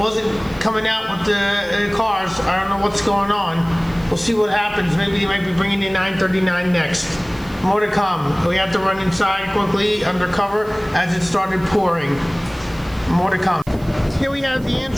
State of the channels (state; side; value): noise; right; hiss, 24 dB below the sound